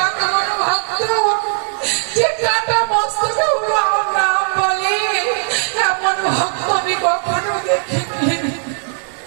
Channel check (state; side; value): silent; left; digital silence